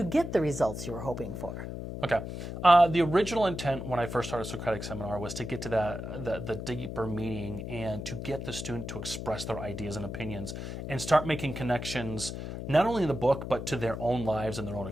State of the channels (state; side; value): noise; left; hum, 7 dB below the sound